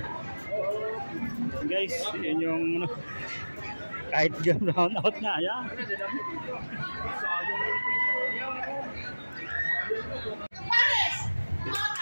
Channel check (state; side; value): inverted; both; correlation -1.00